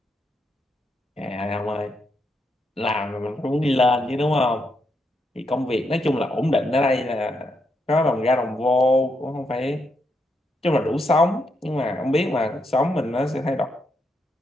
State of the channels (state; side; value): normal; both; correlation 0.80